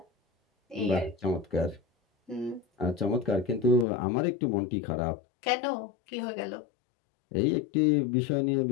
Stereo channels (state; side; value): drops out; right; at 3.9 s